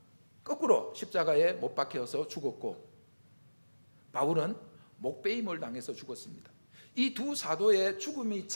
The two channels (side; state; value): both; inverted; correlation -1.00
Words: 거꾸로 십자가에 못 박혀서 죽었고 바울은 목베임을 당해서 죽었습니다. 이 두 사도의 죽음이